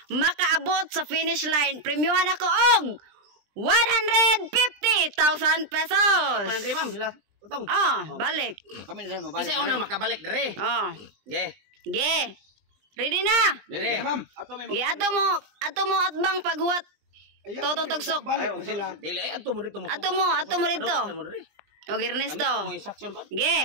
makaabot sa finish line, premyohan ako og 150,000 pesos. Panandri ma'am sila. Tutong. Balik. Kami na rin mabalik. Kasi unang makabalik dere. Ge. Ge. Ready na? Dere ma'am. Ge, ato mo atbang paghuwat. Totong tugsok. Balik ko sila. Dili ay adto mo dito mo. Ato mo rito. Og Ernesto. Mo instruction ko.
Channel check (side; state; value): left; late; 20 ms